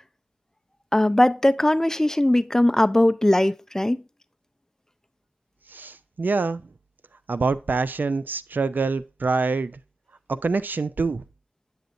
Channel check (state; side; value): normal; both; correlation 0.94